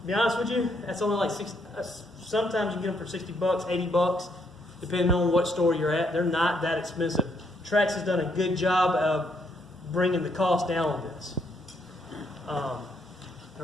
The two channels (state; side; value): normal; both; correlation 0.73